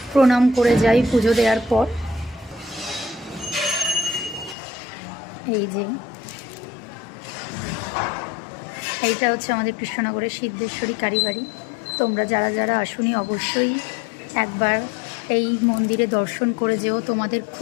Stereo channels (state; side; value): drops out; right; at 4.5 s